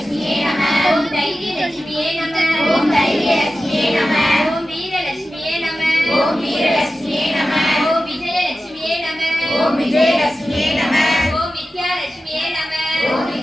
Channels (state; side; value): normal; both; correlation 0.94